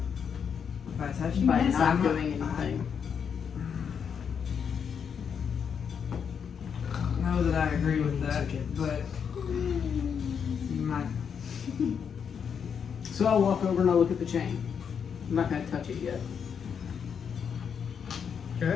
By touching by this, not I'm doing anything. I know that I agree with that, but you might. So I'll walk over and I'll look at the chain. I'm not gonna touch it yet.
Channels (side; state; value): right; quieter; 7.1 dB